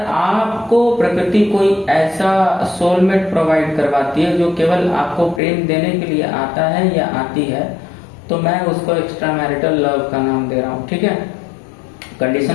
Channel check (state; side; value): drops out; right; at 5.4 s